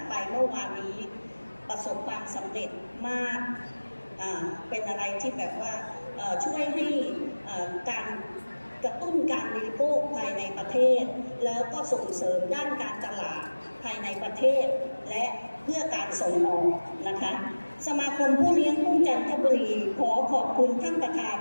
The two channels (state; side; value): inverted; both; correlation -1.00